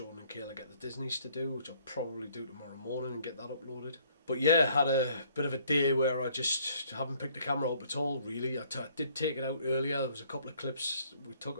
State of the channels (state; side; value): inverted; both; correlation -0.62